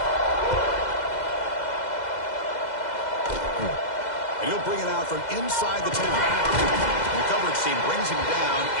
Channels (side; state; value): right; late; 2.0 ms